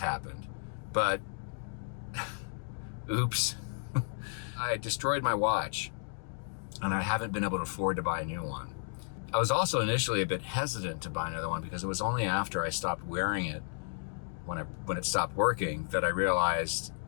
but oops, I destroyed my watch, and I haven't been able to afford to buy a new one. I was also initially a bit hesitant to buy another one because it was only after I stopped wearing it, when it stopped working, that I realized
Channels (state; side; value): silent; right; 56 dB below the other